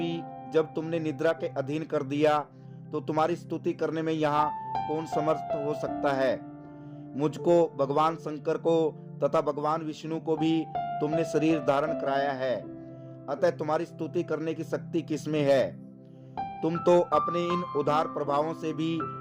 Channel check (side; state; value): both; identical; correlation 1.00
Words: जब तुमने निद्रा के अधीन कर दिया तो तुम्हारी स्तुति करने में यहाँ कौन समर्थ हो सकता है। मुझको, भगवान शंकर को तथा भगवान विष्णु को भी तुमने शरीर धारण कराया है, अतः तुम्हारी स्तुति करने की शक्ति किसमें है। तुम तो अपने इन उदार प्रभावों से भी